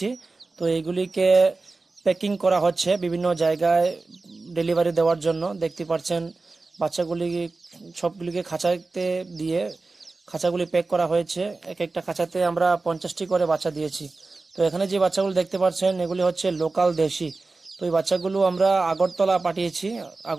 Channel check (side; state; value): left; quieter; 3.6 dB